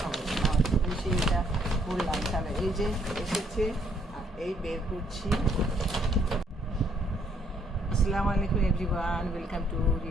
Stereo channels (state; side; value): normal; both; correlation 0.68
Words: বলি। নামাজ পড়ে এসে এটা বললাম, তাহলে এই যে এসেছে আর এই বের করছি। আসসালামু আলাইকুম everyone, welcome to